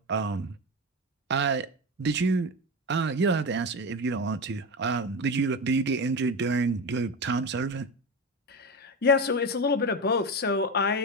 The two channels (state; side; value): normal; both; correlation 0.20